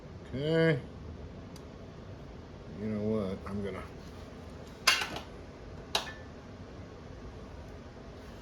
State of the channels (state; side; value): identical; both; correlation 1.00